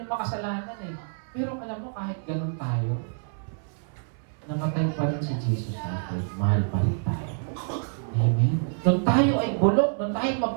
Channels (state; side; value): silent; left; 60 dB below the other